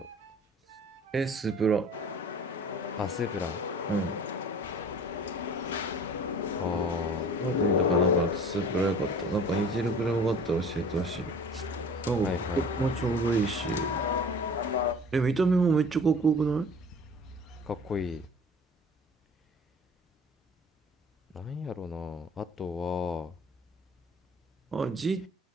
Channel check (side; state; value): both; normal; correlation 0.44